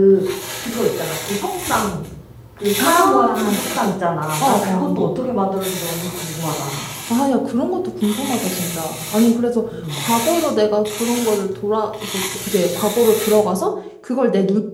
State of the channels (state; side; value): identical; both; correlation 1.00